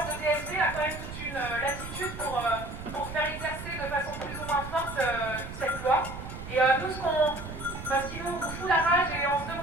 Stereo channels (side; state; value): right; noise; rumble, 10 dB below the sound